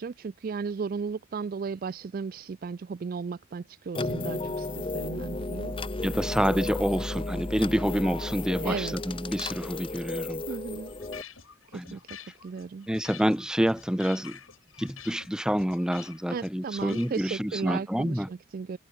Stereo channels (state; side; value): normal; both; correlation 0.82